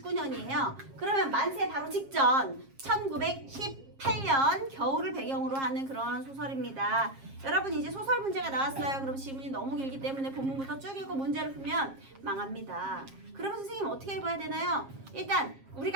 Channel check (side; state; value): left; late; 7.4 ms